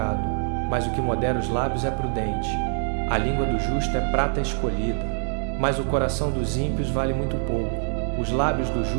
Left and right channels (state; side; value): silent; left; digital silence